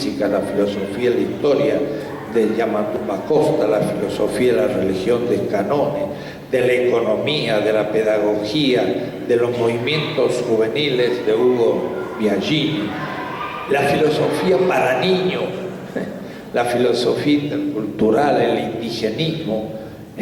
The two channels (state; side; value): identical; both; correlation 1.00